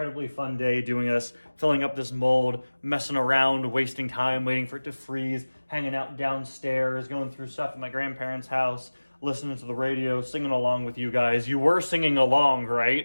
fun day doing this, filling up this mold, messing around, wasting time, waiting for it to freeze, hanging out downstairs, going through stuff at my grandparents' house, listening to the radio, singing along with you guys. You were singing along,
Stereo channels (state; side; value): inverted; both; correlation -1.00